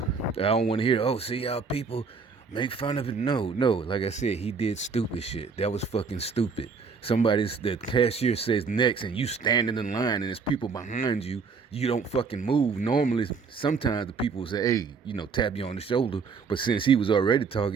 don't want to hear, oh, see how people make fun of it. No, no. Like I said, he did stupid shit. That was fucking stupid. The cashier says next, and you standing in line, and there's people behind you. You don't fucking move. Normally, sometimes the people will say, hey, tap you on the shoulder. But since he was already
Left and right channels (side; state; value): left; quieter; 5.1 dB